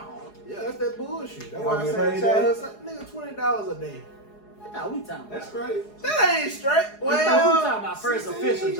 Yeah, that's that bullshit. That's why I Y'all say get child, paid nigga, $20 a day. I thought we talking about. That's great. That ain't straight. I thought we Well, talking about first official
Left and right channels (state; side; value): late; right; 4.8 ms